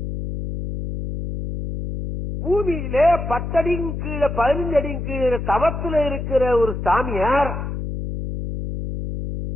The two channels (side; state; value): left; noise; hum, 5 dB below the sound